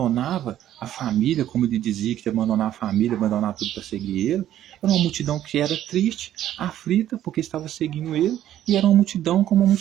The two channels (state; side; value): quieter; left; 12.0 dB